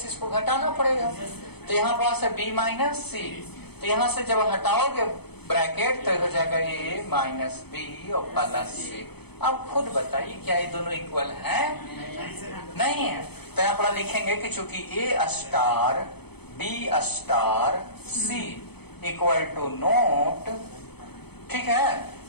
इसको घटाना पड़ेगा, तो यहाँ पास है बी माइनस सी। तो यहाँ से जब हटाओगे ब्रैकेट तो हो जाएगा ए माइनस बी और प्लस सी। अब खुद बताइए क्या ये दोनों इक्वल हैं, नहीं है। तो यहाँ पर लिखेंगे कि चूंकि A star B star C equal to not, ठीक है,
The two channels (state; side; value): late; right; 0.98 ms